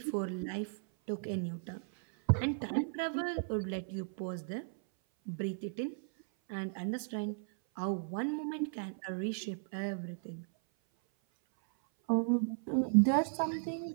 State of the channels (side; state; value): left; silent; 54 dB below the other